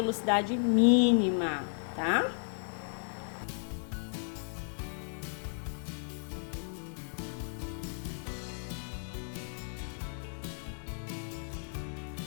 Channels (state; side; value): silent; right; digital silence